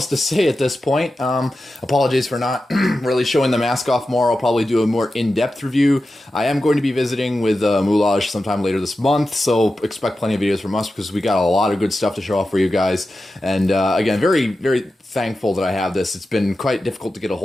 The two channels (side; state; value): both; normal; correlation 0.92